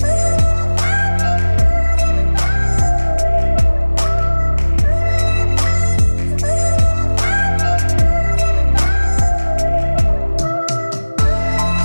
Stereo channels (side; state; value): both; inverted; correlation -1.00